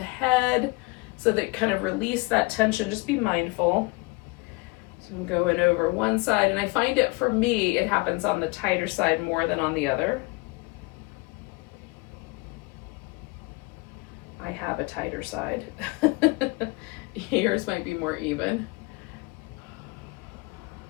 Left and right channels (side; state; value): right; quieter; 25.4 dB